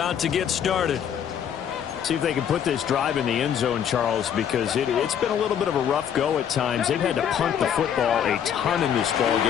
to get started. See if they can put this drive in the end zone, Charles, because it's been a little bit of a rough go at times. They've had to punt the football a ton in this ball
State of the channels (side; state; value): right; quieter; 8.8 dB